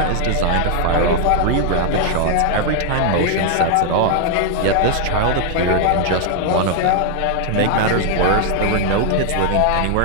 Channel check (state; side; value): different; both; correlation 0.00